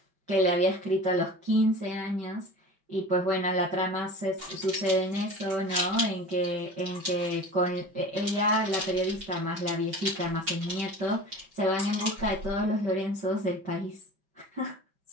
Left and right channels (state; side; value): late; left; 5.2 ms